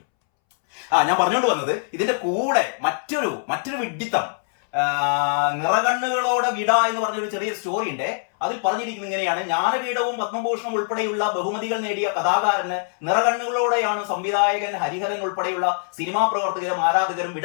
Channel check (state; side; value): silent; right; 63 dB below the other